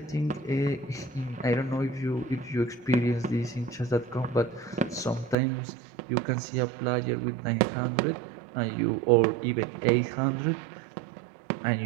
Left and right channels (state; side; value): drops out; left; at 5.4 s